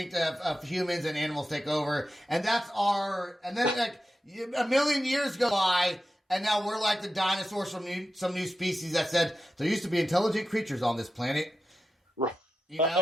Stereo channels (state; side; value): normal; both; correlation 0.91